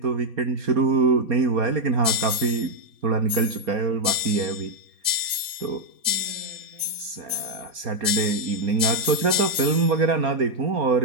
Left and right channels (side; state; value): left; late; 3.9 ms